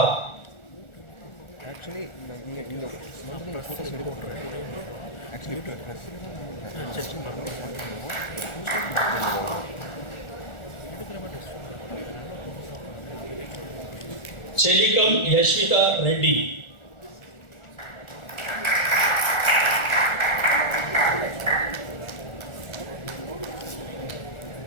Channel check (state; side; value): late; right; 1.4 ms